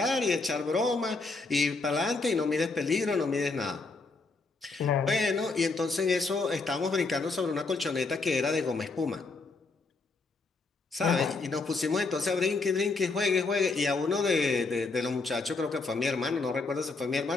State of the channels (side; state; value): right; quieter; 3.8 dB